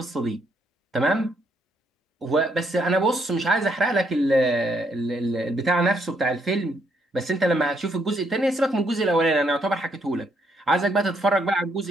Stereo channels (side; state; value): both; normal; correlation 0.73